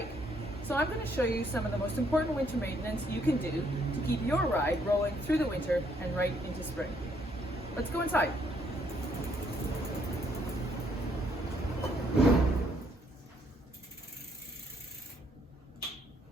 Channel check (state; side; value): normal; both; correlation 0.70